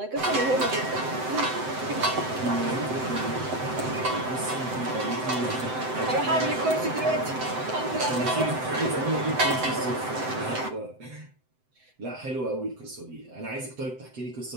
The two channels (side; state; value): left; late; 7.8 ms